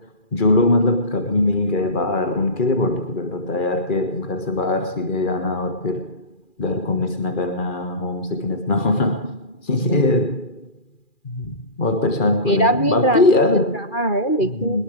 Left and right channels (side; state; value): right; late; 2.4 ms